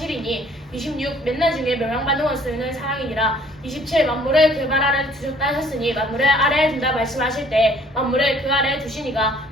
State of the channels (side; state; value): both; normal; correlation 0.58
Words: 26 맨날 중에 멸망받는 원수는 사랑이니라. 27 만물을 그 발 아래에 두셨다 하셨으니 만물을 아래에 둔다 말씀하실 때 만물을 그 아래에 두시니가